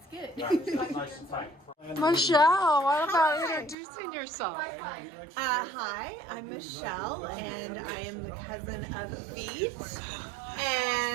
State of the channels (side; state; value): left; drops out; at 3.8 s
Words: good. Michelle, what about introducing yourself? Hi, I'm Michelle, and I am the cousin of Vito.